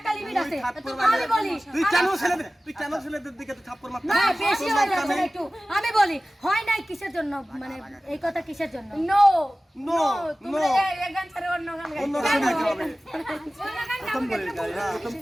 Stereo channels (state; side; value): normal; both; correlation 0.97